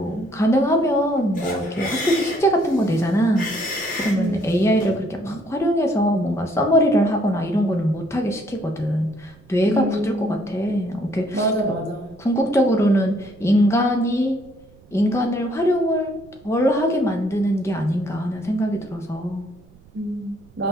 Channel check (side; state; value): right; noise; rumble, 26 dB below the sound